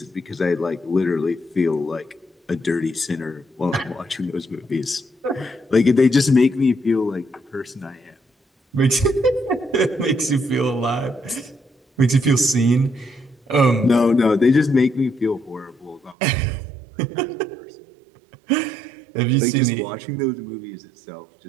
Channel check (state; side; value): drops out; left; at 16.2 s